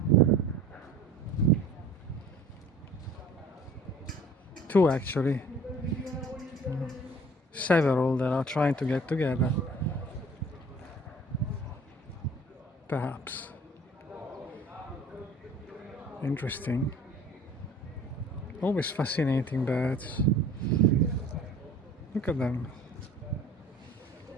Two actually. Several that are trying to get together. Perhaps. Interesting. Always fascinating birds. Look at them.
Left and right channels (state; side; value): normal; both; correlation 0.48